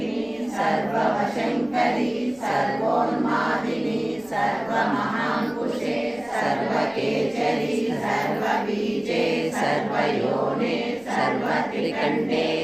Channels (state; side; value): noise; right; rumble, 28 dB below the sound